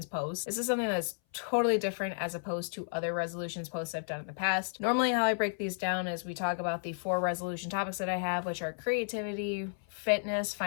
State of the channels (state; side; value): silent; right; 56 dB below the other